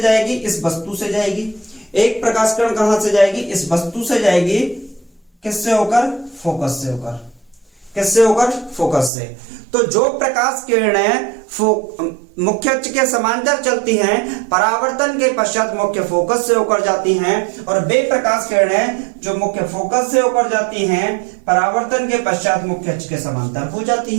जाएगी? इस वस्तु से जाएगी। एक प्रकाश किरण कहां से जाएगी? इस वस्तु से जाएगी। किससे होकर? फोकस से होकर। किससे होकर? फोकस से। तो जो प्रकाश किरणें मुख्य अक्ष के समांतर चलती हैं, परावर्तन के पश्चात मुख्य फोकस से होकर जाती हैं, और वे प्रकाश किरणें जो मुख्य फोकस से होकर जाती हैं, परावर्तन के पश्चात मुख्य अक्ष के समांतर हो जाती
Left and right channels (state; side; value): drops out; left; at 9.1 s